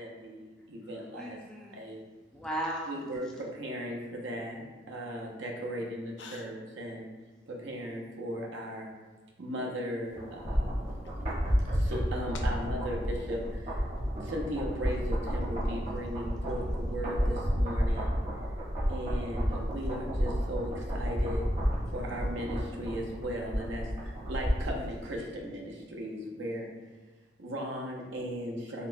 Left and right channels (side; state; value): both; normal; correlation 0.79